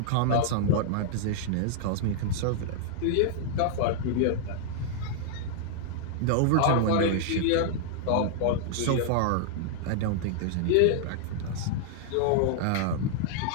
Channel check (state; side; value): different; both; correlation -0.01